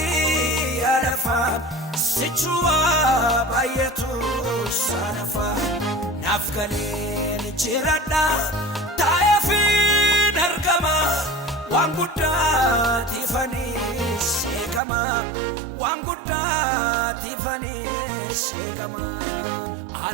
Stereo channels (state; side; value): drops out; left; at 14.8 s